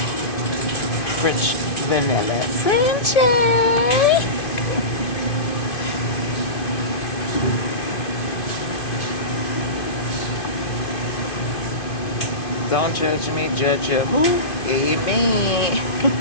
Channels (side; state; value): right; late; 2.5 ms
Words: French vanilla. Frenchie! Don't judge me, judge you. Who? Amen.